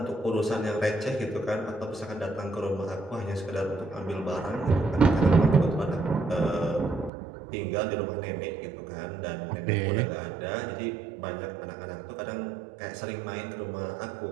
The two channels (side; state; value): left; drops out; at 7.1 s